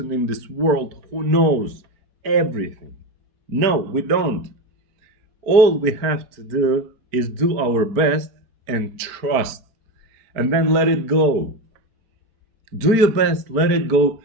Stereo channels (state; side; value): late; left; 5.0 ms